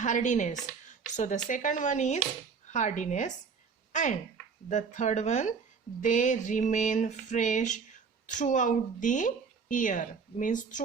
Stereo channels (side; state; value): left; quieter; 5.6 dB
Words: So the second one is hardiness, and the third one, they remain fresh throughout the year. Means